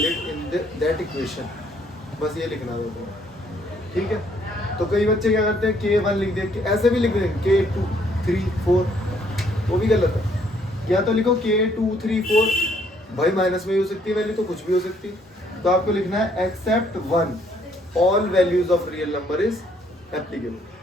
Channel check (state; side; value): normal; both; correlation 0.67